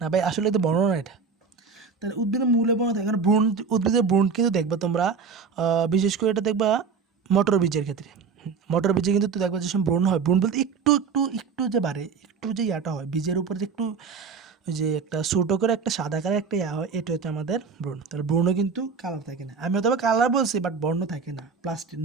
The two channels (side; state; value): left; quieter; 5.5 dB